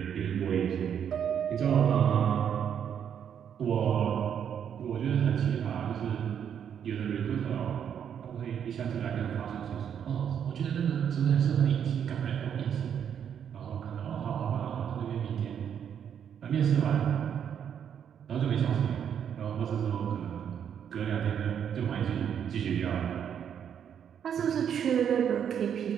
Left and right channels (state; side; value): quieter; left; 8.5 dB